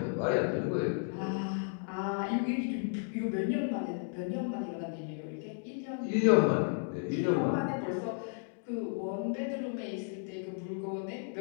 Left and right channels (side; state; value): right; silent; 55 dB below the other